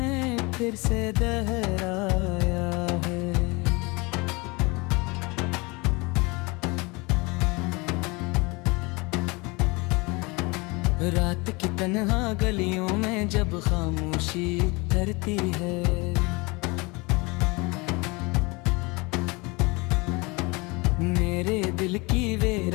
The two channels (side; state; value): right; quieter; 26.3 dB